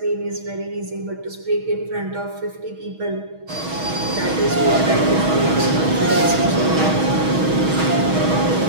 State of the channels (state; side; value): late; left; 6.3 ms